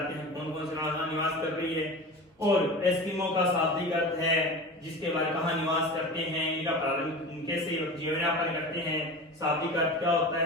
कौन कौन से निवास कर रही है, और एस्किमो का शाब्दिक अर्थ है जिसके बारे में कहाँ निवास करते हैं, इनका प्रारंभ कैसे जीवन यापन करते हैं, शाब्दिक अर्थ क्या होता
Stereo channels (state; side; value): normal; both; correlation 0.32